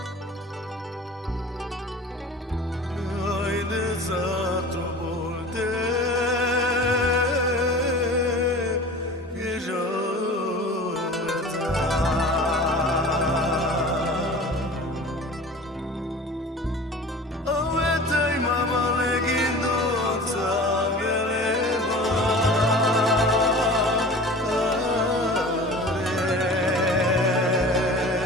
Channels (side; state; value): both; normal; correlation 0.39